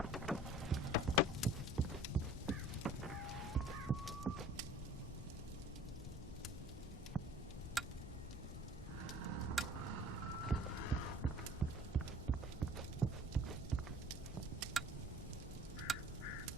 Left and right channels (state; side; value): normal; both; correlation 0.48